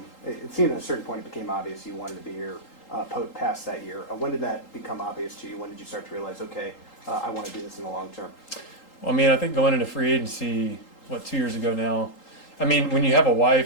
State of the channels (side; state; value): right; late; 3.8 ms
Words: it seemed at a certain point it became obvious you wanted to be here past that year. When did that become obvious to you? When did you start to realize, okay, I want to do this in the long term? Well, I mean, I think going into free agency, 2 years ago now, I mean, when you have a